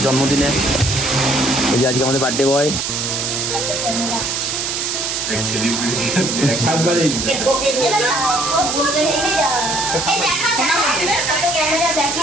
জন্মদিনে। এই যে আজকে আমাদের birthday boy.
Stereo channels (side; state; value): right; noise; hiss, 1 dB below the sound